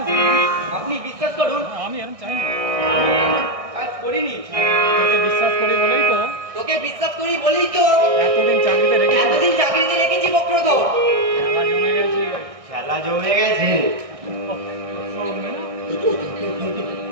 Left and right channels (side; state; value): left; late; 1.6 ms